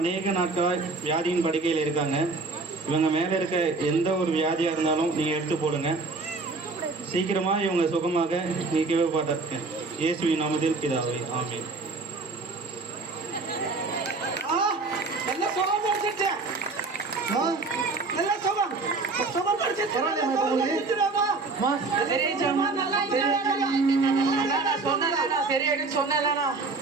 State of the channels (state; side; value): quieter; left; 3.8 dB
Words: நாட்களாய் வியாதியின் படுக்கையில் இருக்காங்க. இவங்க மேல இருக்க எந்த ஒரு வியாதியா இருந்தாலும் நீங்க எடுத்து போடுங்க. சீக்கிரமா இவங்க சுகமாக நீக்கவே பார்த்திருக்கேன். இயேசுவின் நாமத்தில் பிதாவே, ஆமென். நல்லா சுகம் கிடைச்சிருச்சு. நல்லா சுகம் சுகம் கிடைச்சிருச்சு. அம்மா, சரியாயிடுச்சாம்மா? சரியாயிடுன்னு சொன்னேன்லண்ணா.